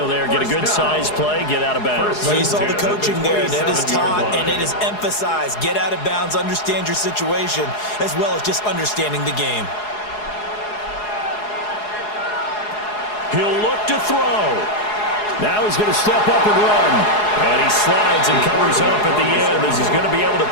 there. Get a good size play, get out of bounds. Well, you saw the coaching there. That is taught and it is emphasized. Get out of bounds, understand your situation, as well as just understanding the game. He'll look to throw. Now he's going to step up and run. And he slides and covers up at the end as he's going to be able to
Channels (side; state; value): right; late; 4.8 ms